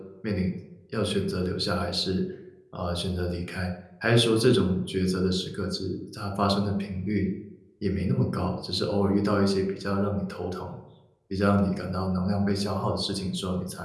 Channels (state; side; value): identical; both; correlation 1.00